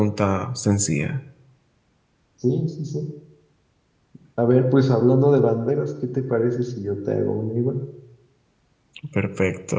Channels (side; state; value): both; identical; correlation 1.00